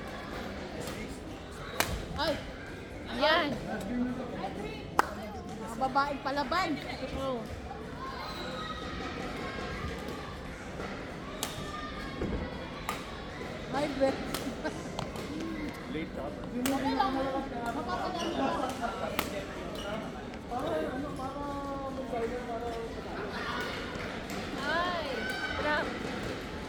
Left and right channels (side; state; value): both; identical; correlation 1.00